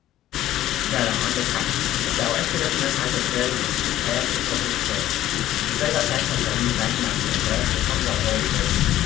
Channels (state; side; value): quieter; right; 13.5 dB